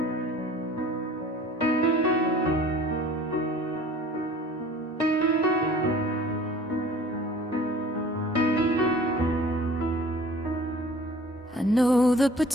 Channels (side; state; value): both; normal; correlation 0.48